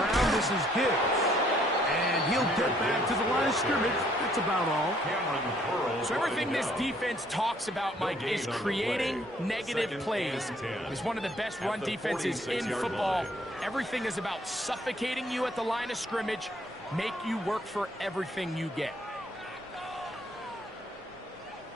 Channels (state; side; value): normal; both; correlation 0.64